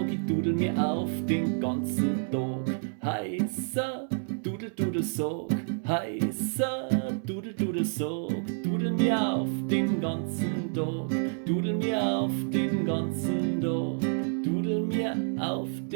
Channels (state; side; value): silent; left; 59 dB below the other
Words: ich dudel mir auf den ganzen Tag. Heißer Dudel-Dudel-Sog, heißer Dudel-Dudel-Sog, dudel mir auf den ganzen Tag, dudel mir auf den ganzen Tag, dudel mir auf